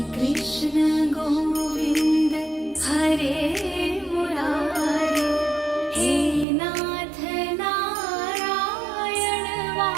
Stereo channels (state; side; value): drops out; left; at 6.5 s